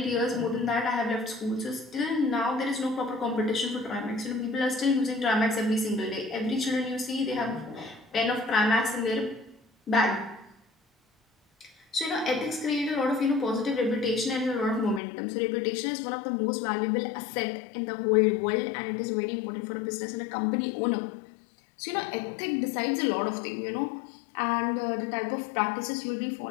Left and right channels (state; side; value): drops out; right; at 15.0 s